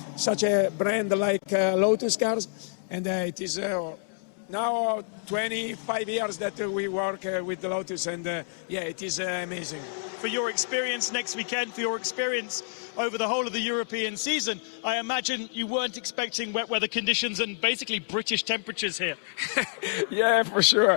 such a brand like Lotus Cars. And it is now 25 years that we work with the Lotus, and yeah, it is amazing. For your experience next weekend, for your experience over the whole of the European season, I imagine you weren't expecting wet weather conditions and basically British temperatures here. Yeah, for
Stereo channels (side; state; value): right; silent; digital silence